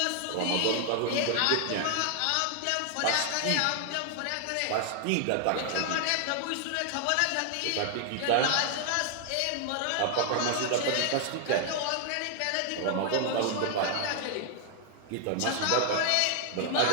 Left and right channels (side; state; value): both; different; correlation 0.00